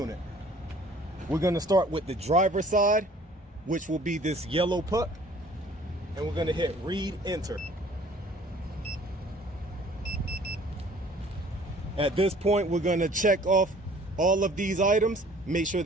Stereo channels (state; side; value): normal; both; correlation 0.53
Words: We're going to start with the driver's side, which will be this yellow puck, and we're going to hit read enter. At this point, we're going to check off all of these items, make sure